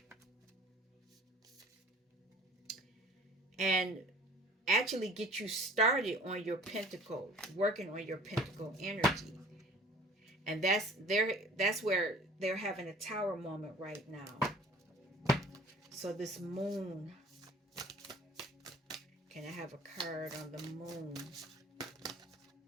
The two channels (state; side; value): normal; both; correlation 0.49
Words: And actually get you started on your pentacle, working on your pentacle energy. And that's where they're having a tower moment right now. So this moon, can I have a card on the moon?